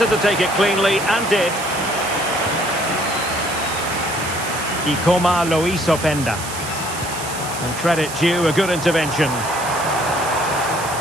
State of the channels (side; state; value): right; noise; hiss, 9 dB below the sound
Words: to take it cleanly and did. Ikoma Lois Openda. And credit due, a good intervention.